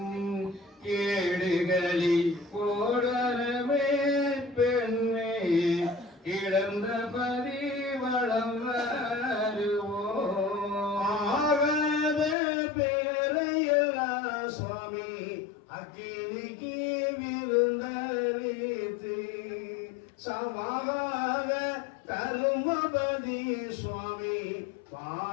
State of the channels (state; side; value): drops out; right; at 12.4 s